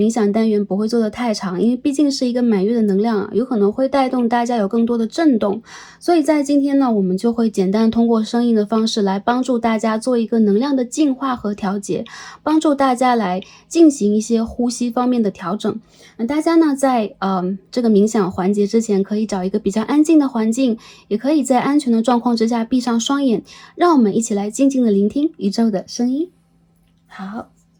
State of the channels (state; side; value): identical; both; correlation 1.00